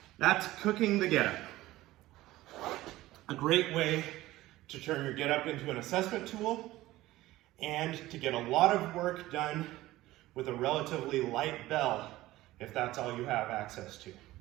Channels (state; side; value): quieter; left; 16.9 dB